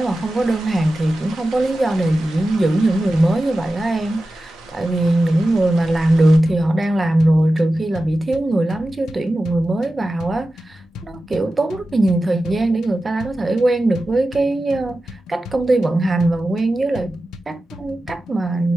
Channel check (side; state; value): both; normal; correlation 0.94